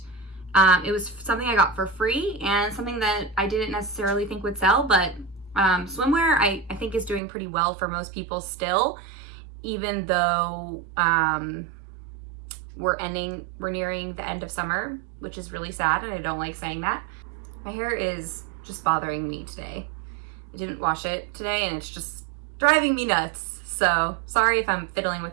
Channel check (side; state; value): left; drops out; at 7.2 s